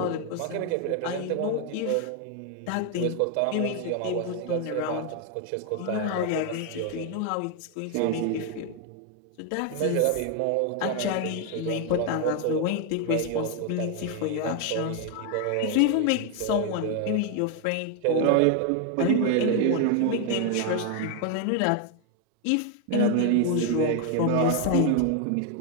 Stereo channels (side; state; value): both; different; correlation 0.01